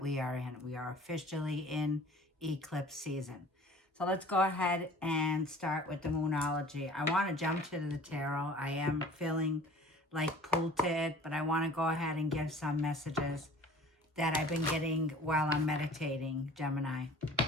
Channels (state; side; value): normal; both; correlation 0.46